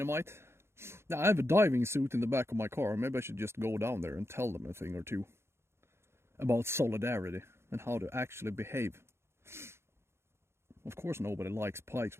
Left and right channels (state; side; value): late; left; 0.12 ms